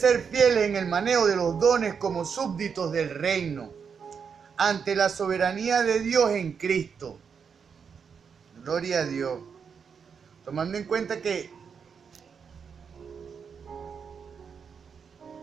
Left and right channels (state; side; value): quieter; left; 6.4 dB